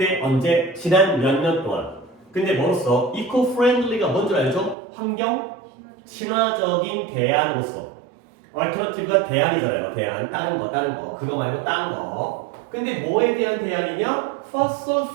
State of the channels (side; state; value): left; drops out; at 4.8 s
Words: 언제? 지난 몇 년 동안. 근데 뭐로써? 이코프렌들리가 뭔지 알죠? 환경 친화적인 대안으로서. 얼터너티브가 대안이잖아요. 대안. 다른 거. 그거 말고 다른 거. 근데 뭐에 대한 대안이냐? fossil